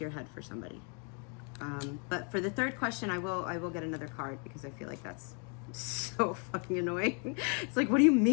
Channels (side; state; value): right; quieter; 38.8 dB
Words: your head for somebody. But for the third question, I will get another card, because I feel like that's so fucking annoying. It's like, what do you